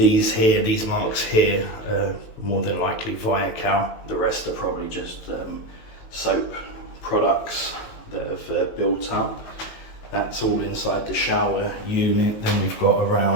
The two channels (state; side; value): late; right; 18 ms